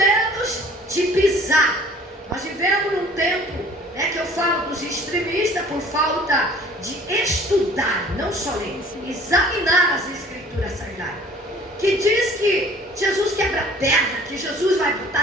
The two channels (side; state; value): both; normal; correlation 0.51